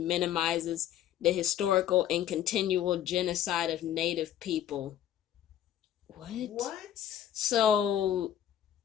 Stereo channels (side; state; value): right; quieter; 11.0 dB